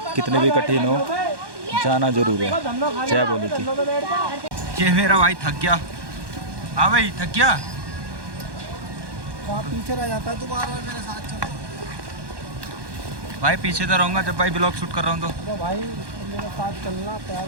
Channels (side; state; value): left; late; 1.1 ms